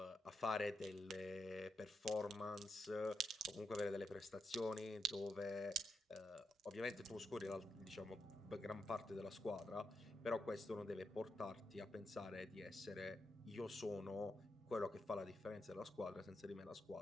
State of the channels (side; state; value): both; normal; correlation 0.83